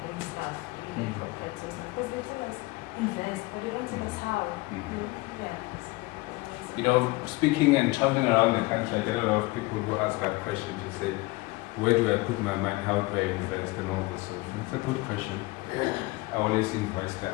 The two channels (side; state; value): right; quieter; 22.5 dB